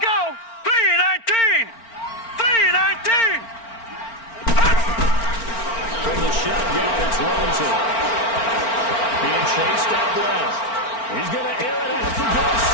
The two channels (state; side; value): late; right; 4.4 ms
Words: 3-19. 3-19. From the shotgun, it's Rosen. Being chased out left. He's going to air it out for goal